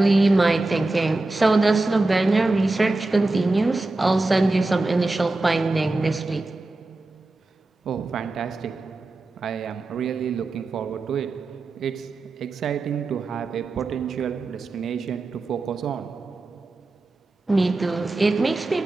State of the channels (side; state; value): left; quieter; 3.1 dB